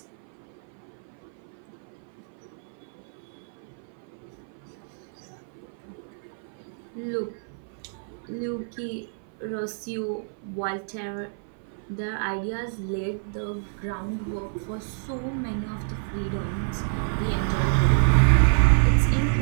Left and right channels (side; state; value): left; silent; 55 dB below the other